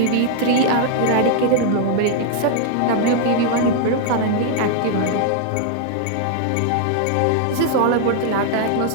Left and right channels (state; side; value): different; both; correlation -0.01